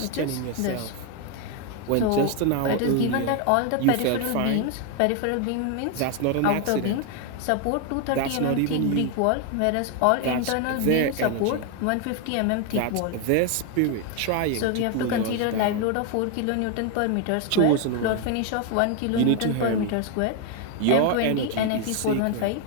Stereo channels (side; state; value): both; different; correlation 0.01